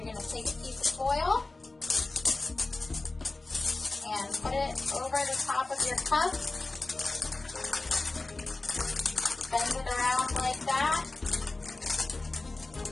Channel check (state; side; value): quieter; right; 3.2 dB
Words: going to take a piece of foil and put it over the top of your cup. Bend it around like that.